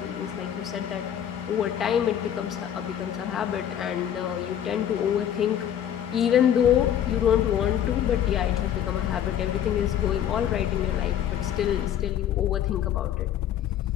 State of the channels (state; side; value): quieter; right; 10.1 dB